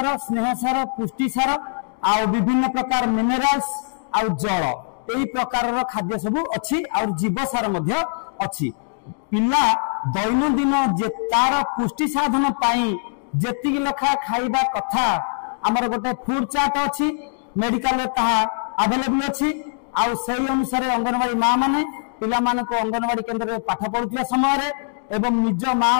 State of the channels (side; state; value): right; silent; digital silence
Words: स्नेह सार पुष्टि सार आ विभिन्न प्रकार मिनरल्स और जल यही प्रकार खाद्य सब अच्छी और जीव सार मध्य अच्छी। पिला दैनंदिन जे तार पुष्टि साधन पाई जेतिक लेखा खाइबा कथा आमर गोटे फूड चार्ट अच्छी मेडिकल रे ताहा अवेलेबल अच्छी आउ सही अनुसार अंगनवाड़ी माँ माने पिला माने को अंगनवाड़ी केंद्र रे पाठ पढुथिया समय रे एवं निज माँ